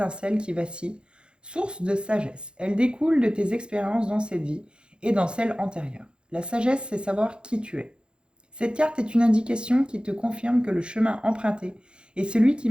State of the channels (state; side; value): late; left; 0.053 ms